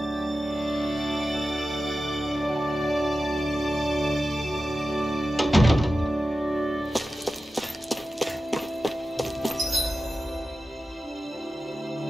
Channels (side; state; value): both; normal; correlation 0.93